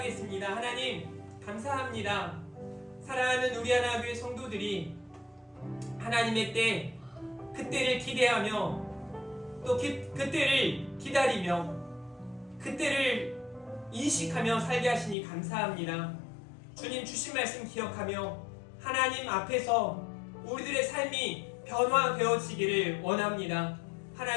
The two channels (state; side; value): drops out; right; at 15.2 s